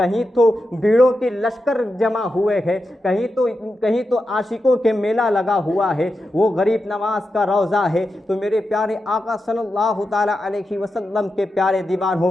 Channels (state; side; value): normal; both; correlation 0.89